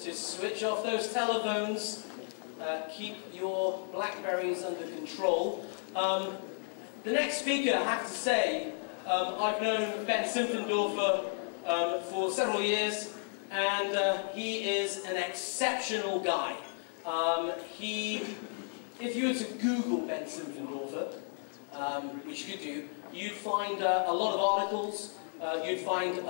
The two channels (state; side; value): silent; right; 56 dB below the other